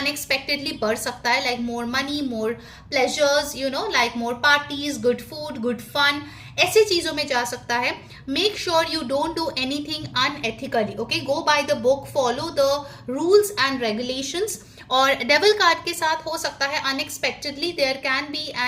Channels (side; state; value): both; identical; correlation 1.00